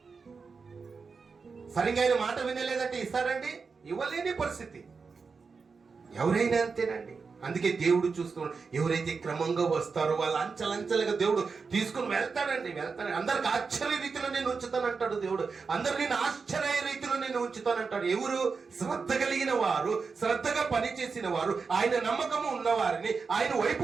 సరిగ్గా ఆయన మాట వినలేదంటే ఇస్తారండి? ఇవ్వలేని పరిస్థితి. ఎవరైనా అంతేనండి. అందుకే దేవుడు చూస్తున్నాడు, ఎవరైతే క్రమంగా వస్తారో వాళ్ళు అంచెలంచెలుగా దేవుడు తీసుకుని వెళ్తాడండి. అందరికి ఆశ్చర్య రీతిలో నేను ఉంచుతానంటాడు దేవుడు. అందరు నేను ఆశ్చర్య రీతిలో నేను ఉంచుతానంటాడు. ఎవరు? శ్రద్ధ కలిగిన వారు, శ్రద్ధగా పనిచేసిన వారు, ఆయన నమ్మకము ఉన్నవారిని, ఆయన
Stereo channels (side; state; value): left; quieter; 5.0 dB